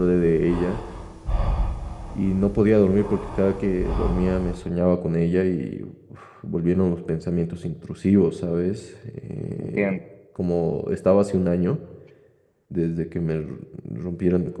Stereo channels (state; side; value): identical; both; correlation 1.00